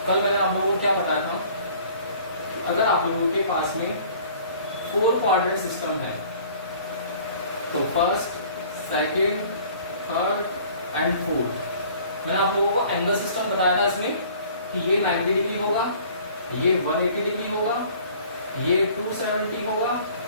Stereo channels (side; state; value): both; inverted; correlation -0.51